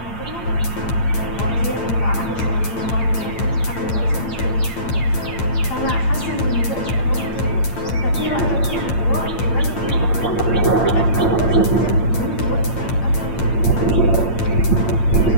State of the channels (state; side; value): late; right; 8.8 ms